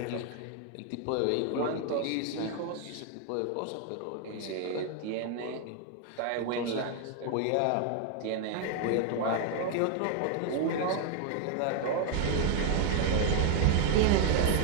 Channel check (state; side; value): different; both; correlation 0.00